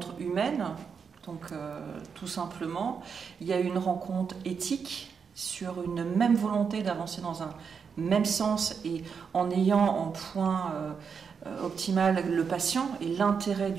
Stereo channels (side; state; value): left; quieter; 6.2 dB